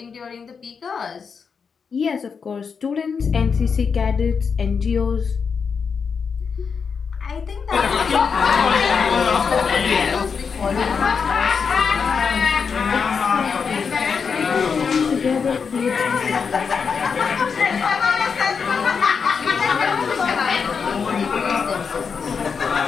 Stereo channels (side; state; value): right; quieter; 5.9 dB